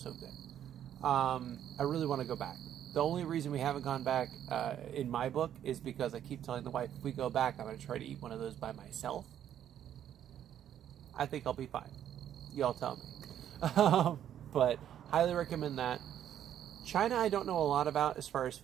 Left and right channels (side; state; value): left; quieter; 10.4 dB